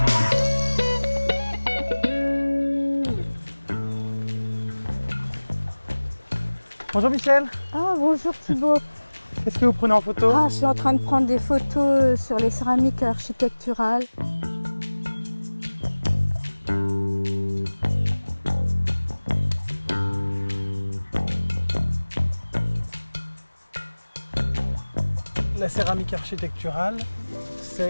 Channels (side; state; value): both; inverted; correlation -1.00